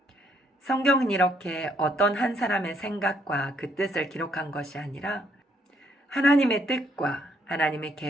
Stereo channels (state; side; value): normal; both; correlation 0.70